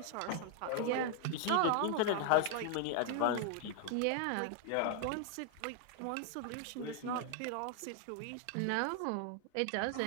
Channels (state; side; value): different; both; correlation 0.00